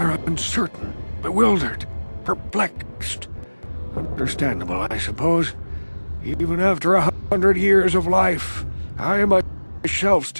uncertain, bewildered, perplexed. Understandable, I suppose. Even after 100 years of life, I myself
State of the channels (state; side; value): inverted; both; correlation -1.00